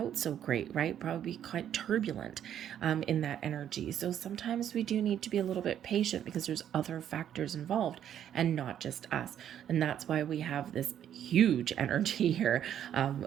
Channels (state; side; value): quieter; left; 10.1 dB